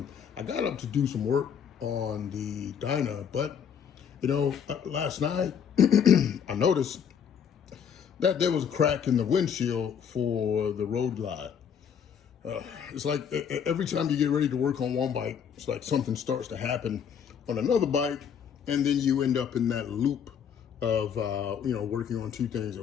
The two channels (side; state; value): right; quieter; 7.7 dB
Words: I got up to do some work on the Dyna, but last night I noticed that there was a crack in the windshield for the Road Glide. It's like every time you get ready to work on one bike, it's like something starts to happen on another bike, and then you end up in that loop of working on two things at